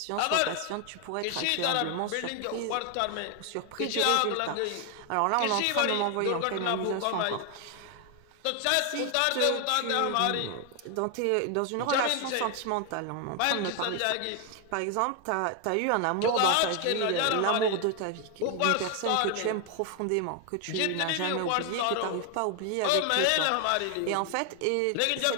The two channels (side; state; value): both; different; correlation 0.01